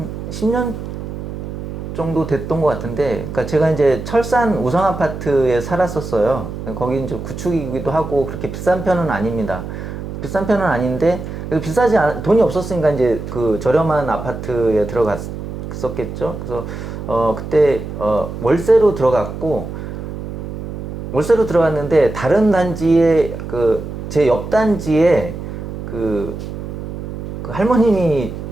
10년 정도 됐던 것 같은데, 그러니까 제가 이제 철산 우성 아파트에 살았었어요. 거기 이제 구축이기도 하고 그렇게 비싼 편은 아닙니다. 비싼 편은 아닌데 돈이 없었으니까 이제 그 저렴한 아파트에 들어갔었겠죠. 그래서 그때 월세로 들어갔는데 다른 단지에 제 옆 단지에 그 할머님이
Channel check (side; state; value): right; noise; hum, 8 dB below the sound